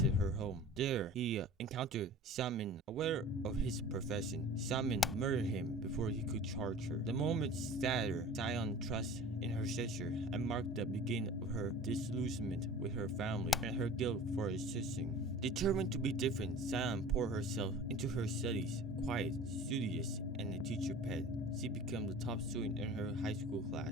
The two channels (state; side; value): normal; both; correlation 0.41